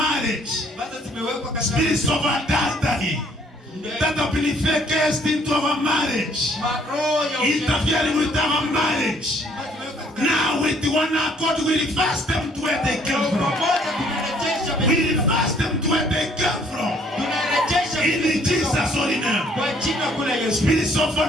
Spirits of adultery that have been cast into our marriage, interfering with our marriage. Now with one accord we reverse them to where they came from. We reverse them to where they came from. In Jesus' holy name. Spirits of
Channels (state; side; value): normal; both; correlation 0.63